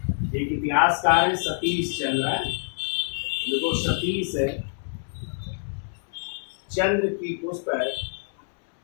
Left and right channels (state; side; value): silent; right; digital silence